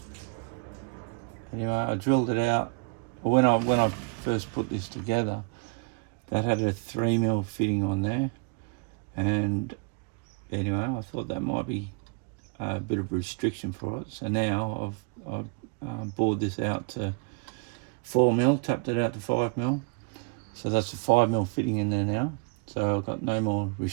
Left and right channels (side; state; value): left; quieter; 32.1 dB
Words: Anyway, I drilled it out. When I first put this together, that had a 3mm fitting on there, and anyway, I thought that might be a bit of a restriction for it. So now I've bored this out to 4mm, tapped it out to 5mm. So that's a 5mm fitting in there now. So I've got no more